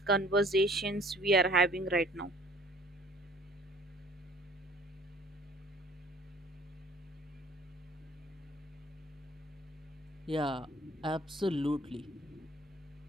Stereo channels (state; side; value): normal; both; correlation 0.53